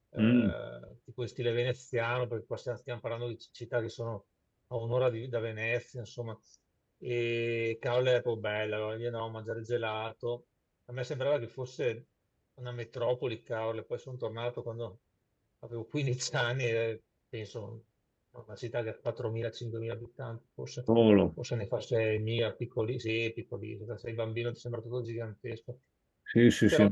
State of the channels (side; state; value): both; identical; correlation 1.00